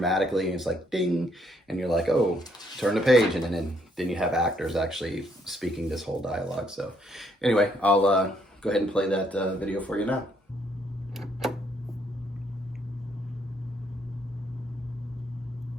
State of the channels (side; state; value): both; normal; correlation 0.70